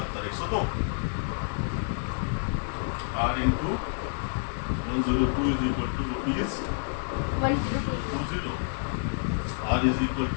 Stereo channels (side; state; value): right; silent; digital silence